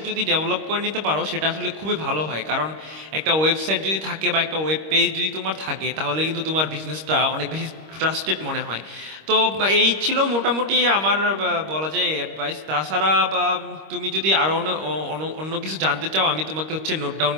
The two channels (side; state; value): left; late; 26 ms